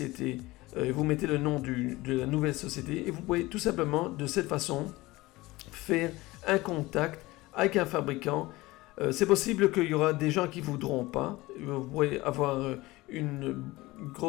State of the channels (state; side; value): quieter; right; 20.1 dB